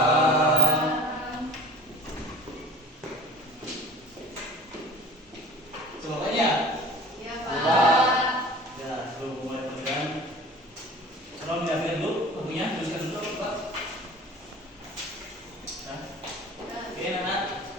Semuanya? Ya, Pak. Ya, sebelum mulai pelajaran, tolong diambil dulu bukunya, tuliskan dulu, Pak. Nah, oke, anak,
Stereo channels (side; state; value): both; normal; correlation 0.42